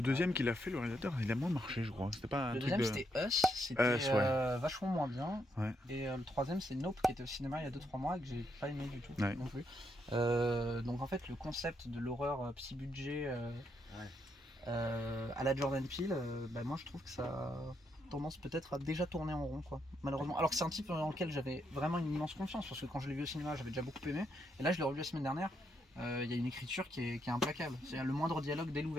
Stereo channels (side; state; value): both; normal; correlation 0.78